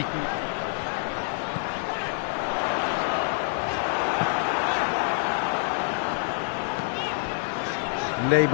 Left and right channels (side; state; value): right; silent; 60 dB below the other